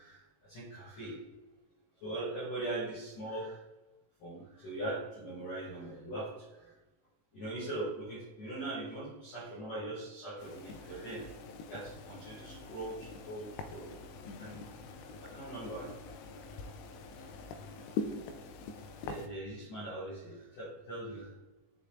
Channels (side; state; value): right; late; 19 ms